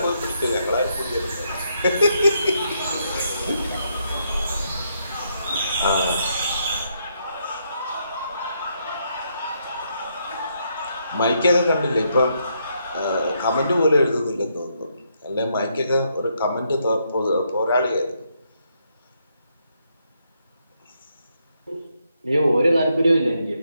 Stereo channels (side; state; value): both; inverted; correlation -0.76